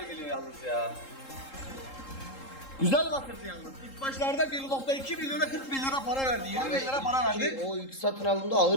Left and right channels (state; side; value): late; right; 3.8 ms